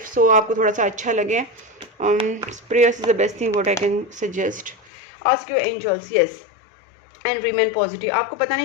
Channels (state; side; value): drops out; right; at 4.9 s